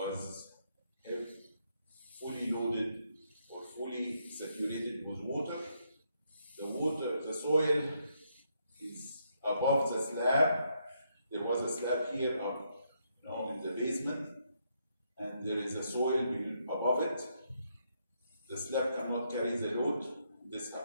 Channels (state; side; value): inverted; both; correlation -0.76